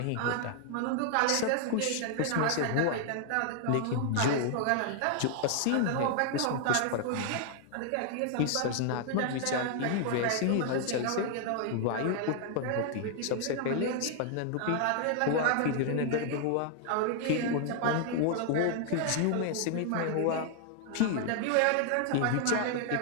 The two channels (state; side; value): different; both; correlation 0.00